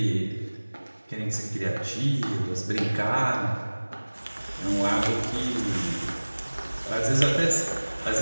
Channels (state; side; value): inverted; both; correlation -1.00